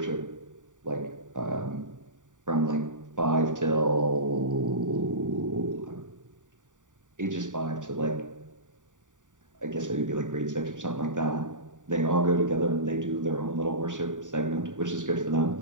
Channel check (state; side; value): late; left; 0.86 ms